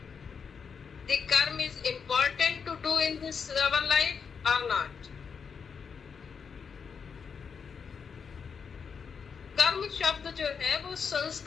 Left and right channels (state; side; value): quieter; right; 6.2 dB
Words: the karma is important to do in this our life or not. कर्म शब्द जो है वो